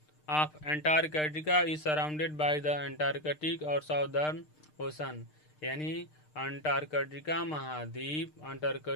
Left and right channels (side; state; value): right; late; 6.6 ms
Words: of Antarctica is surrounded by the Antarctic और साउदर्न ओशन, यानी अंटार्कटिका महाद्वीप